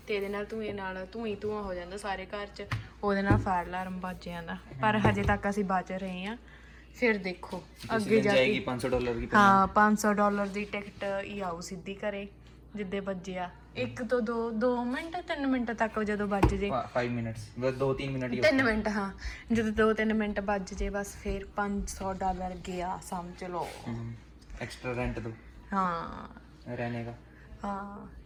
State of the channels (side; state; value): both; identical; correlation 1.00